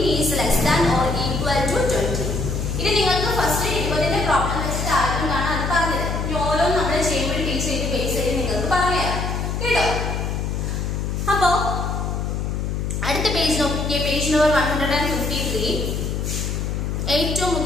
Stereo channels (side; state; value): left; noise; hum, 2 dB below the sound